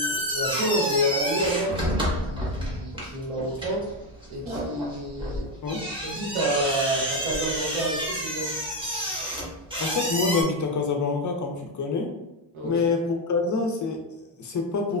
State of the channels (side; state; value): both; normal; correlation 0.08